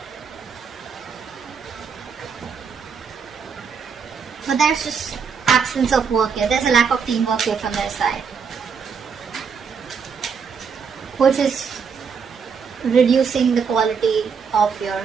But there's just absence of work here. There's a lack of teamwork here from their side, which is reducing the quality of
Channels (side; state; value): left; quieter; 6.1 dB